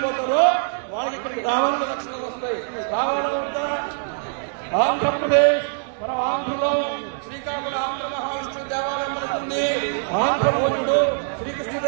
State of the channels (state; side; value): silent; left; 63 dB below the other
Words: పోతారో వాళ్ళకి ఇక్కడ రావాలని లక్షణాలు వస్తాయి. రావాలా వద్దా? ఆంధ్రప్రదేశ్ మన ఆంధ్రలో శ్రీకాకుళం ఆంధ్ర మహావిష్ణు దేవాలయం పడుతుంది. ఆంధ్రభోజుడు